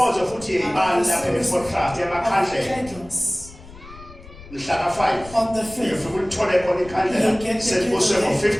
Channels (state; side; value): noise; left; rumble, 19 dB below the sound